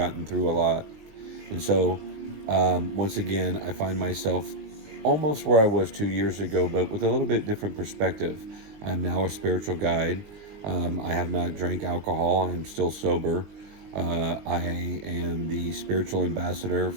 through a lot. And so, once again, I find myself almost where I was 2 years ago, but with a little bit different perspective. I'm now a spiritual guide. I have not drank alcohol. I'm still sober. I am the spiritual ambassador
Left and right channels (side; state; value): left; late; 19 ms